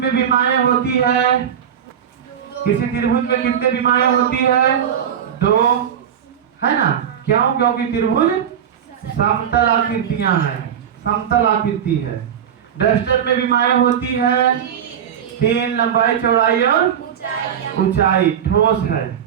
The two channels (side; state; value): left; quieter; 8.8 dB